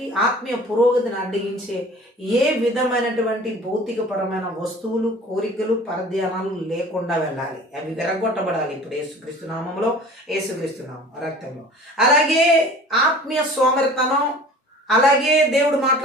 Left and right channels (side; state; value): both; normal; correlation 0.44